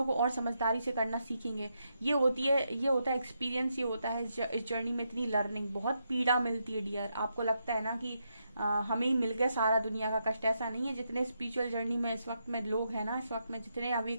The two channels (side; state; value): both; inverted; correlation -0.81